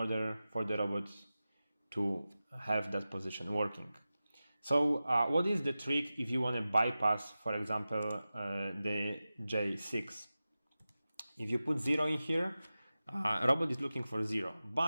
for the robot to have that position working. So what is the trick if you want to bypass, for example, the J6? If you put 0 in here, robot is looking for 0.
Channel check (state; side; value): inverted; both; correlation -0.95